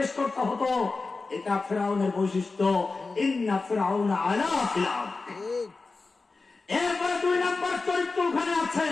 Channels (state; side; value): quieter; right; 3.9 dB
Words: করতে হতো। এটা ফিরআউনের বৈশিষ্ট্য, ইন্না ফিরআউনা আলা ফিল আরদ। এরপরে 2 নম্বর চরিত্র ওখানে আছে,